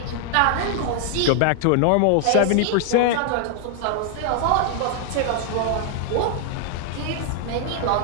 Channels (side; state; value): both; different; correlation 0.00